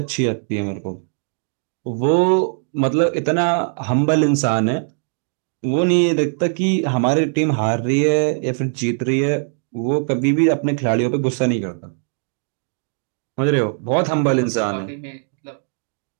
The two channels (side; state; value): left; silent; 58 dB below the other